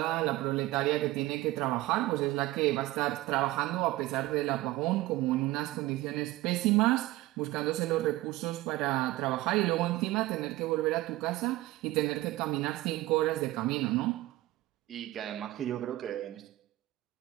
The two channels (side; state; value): left; quieter; 17.7 dB